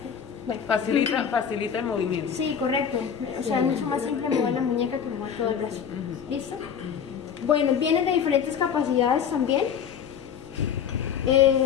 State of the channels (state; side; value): quieter; right; 7.7 dB